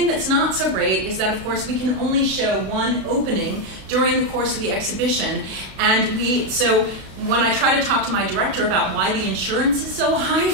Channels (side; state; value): left; late; 32 ms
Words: that's not so great is that, of course, we can only show one opening during the course of the exhibition. And so when I try to talk to my director about why the insurance is so high